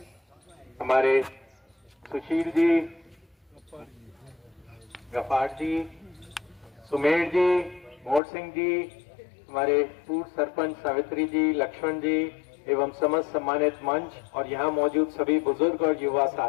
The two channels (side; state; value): right; drops out; at 8.2 s